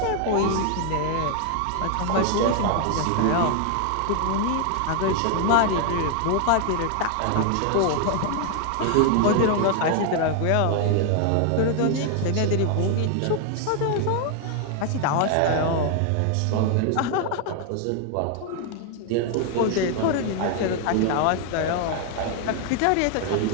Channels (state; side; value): different; both; correlation 0.00